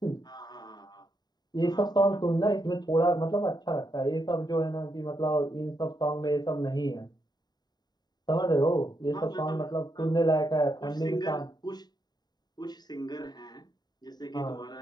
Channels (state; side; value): late; right; 0.20 ms